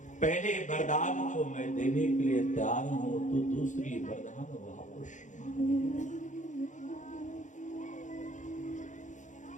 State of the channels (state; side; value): late; right; 0.36 ms